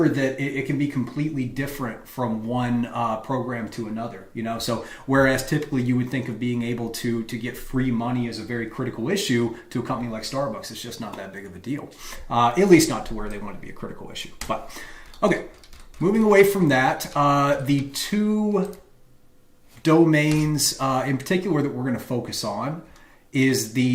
that it can be completely different from one program to another. So whereas typically you would think of being able to get free money as a very critical issue to a company like Starbucks, it's just not that big of a deal. At least not to where they want it to be a critical issue. But okay, moving away from that, the two domains in particular that we're going to focus on is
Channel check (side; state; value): both; identical; correlation 1.00